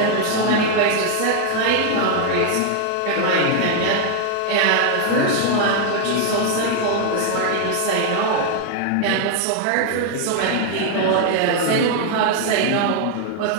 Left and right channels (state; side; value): different; both; correlation 0.00